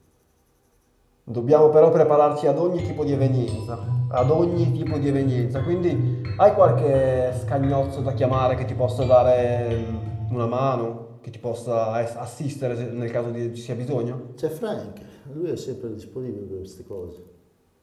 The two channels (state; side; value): identical; both; correlation 1.00